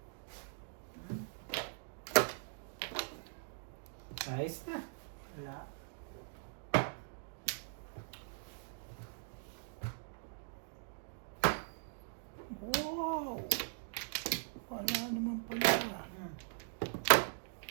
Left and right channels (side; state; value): left; silent; digital silence